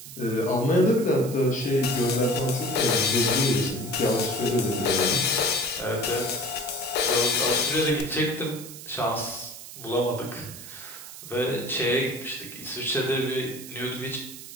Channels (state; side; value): noise; right; hiss, 13 dB below the sound